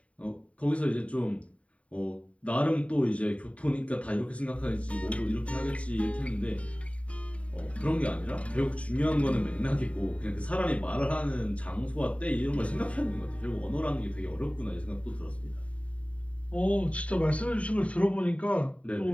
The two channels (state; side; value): late; right; 0.065 ms